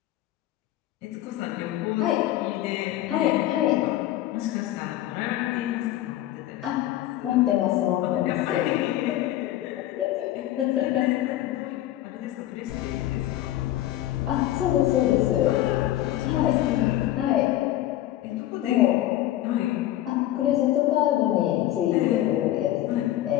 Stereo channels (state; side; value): quieter; right; 14.1 dB